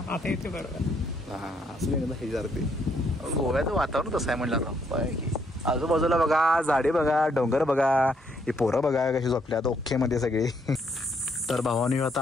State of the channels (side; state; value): both; normal; correlation 0.72